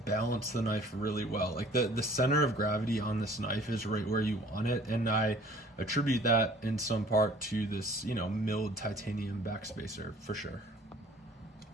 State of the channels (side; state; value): both; normal; correlation 0.52